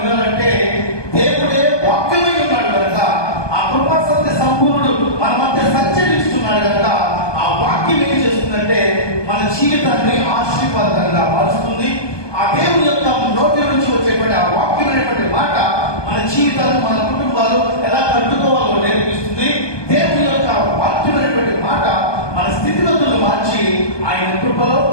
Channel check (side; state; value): right; late; 1.2 ms